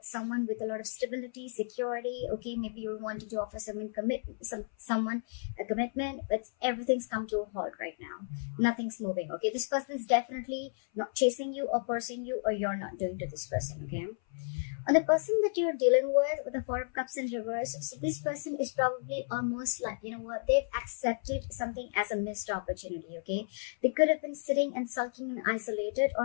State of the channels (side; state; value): right; silent; 56 dB below the other